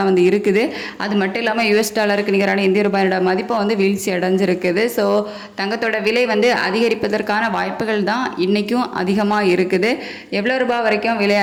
வந்து இருக்குது. அது மட்டும் இல்லாமல் யூஎஸ் டாலருக்கு நிகரான இந்திய ரூபாயோட மதிப்பை வந்து வீழ்ச்சி அடைஞ்சிருக்குது. ஸோ தங்கத்தோட விலை வந்து அதிகரிப்பதற்கான வாய்ப்புகள் தான் இன்றைக்கும் அதிகமாக இருக்குது. எவ்வளோ ரூபாய் வரைக்கும் விலை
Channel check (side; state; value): both; identical; correlation 1.00